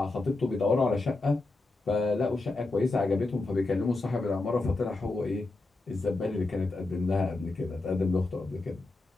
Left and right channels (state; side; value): quieter; right; 3.2 dB